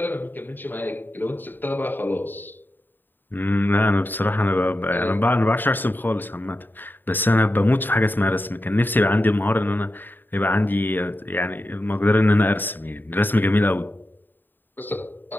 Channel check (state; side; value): late; right; 0.092 ms